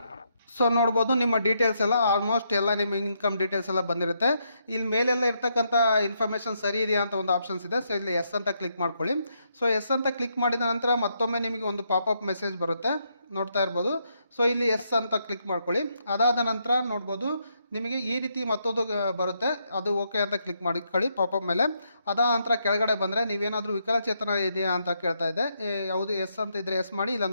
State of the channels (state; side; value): inverted; both; correlation -0.78